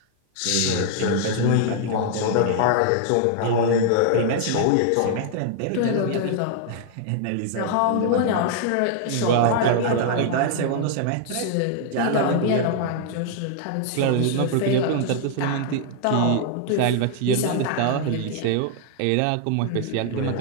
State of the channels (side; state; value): both; different; correlation -0.01